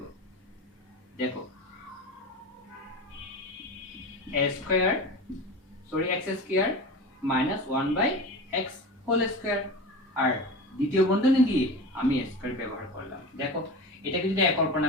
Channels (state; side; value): normal; both; correlation 0.30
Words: দেখো x square minus 1/x whole square, আর দ্বিতীয় বন্ধনী দিয়ে আমি a স্কয়ার ব্যবহার করলাম। দেখো এটাকে যদি a